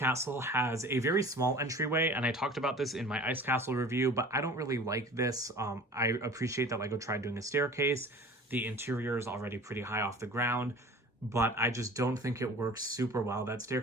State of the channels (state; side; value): normal; both; correlation 0.43